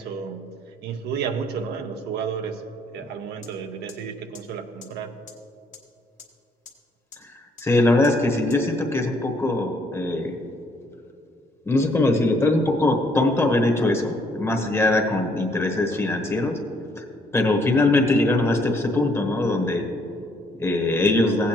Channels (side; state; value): both; normal; correlation 0.67